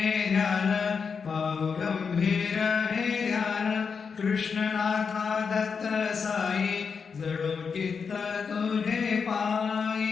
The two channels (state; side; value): quieter; right; 5.8 dB